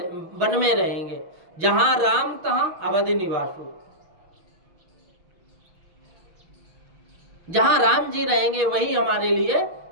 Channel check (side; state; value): left; late; 6.1 ms